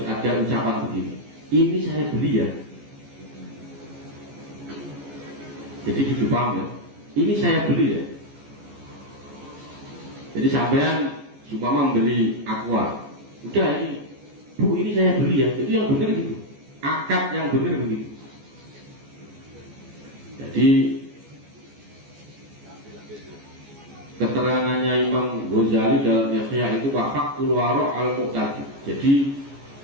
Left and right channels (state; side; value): late; left; 14 ms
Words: ada ucapan begini. Ini saya beli ya. Jadi gitu paham ya. Ini saya beli ya. Jadi sampean supaya membeli aqua. Udah ini, Bu ini saya beli ya. Itu yang benar gitu. Akad yang benar begitu. Jadi keterangannya Imam Ghazali dalam Ihya itu wafaqul waro' al-muqtadi. Jadi